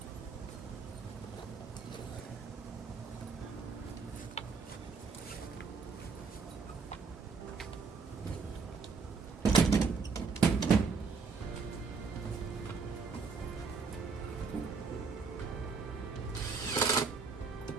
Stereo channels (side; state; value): left; quieter; 5.0 dB